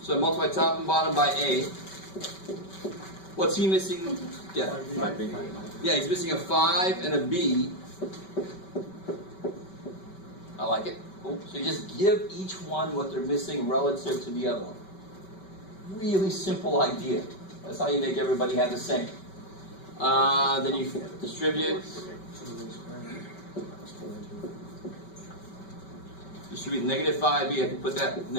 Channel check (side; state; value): right; late; 5.2 ms